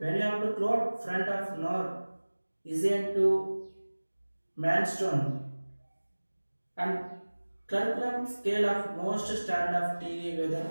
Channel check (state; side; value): inverted; both; correlation -1.00